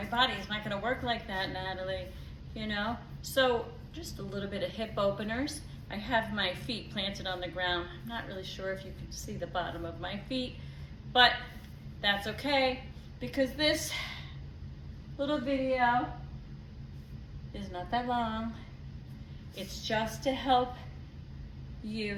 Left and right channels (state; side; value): identical; both; correlation 1.00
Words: body's not gonna work like that, Natalie, you know? So just a little bit of hip openers. I have my feet planted on the ground. I'm not really sure if you can see the bottom of my feet, but that's okay because this little video is not that long. It's just to help